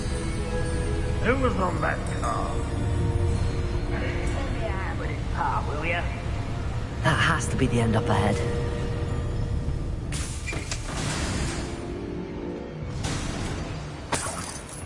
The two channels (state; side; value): identical; both; correlation 1.00